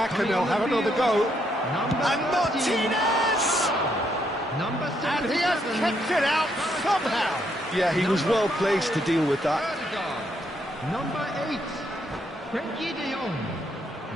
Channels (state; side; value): normal; both; correlation 0.75